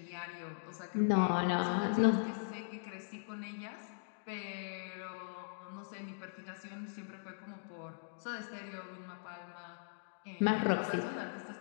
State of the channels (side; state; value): right; silent; digital silence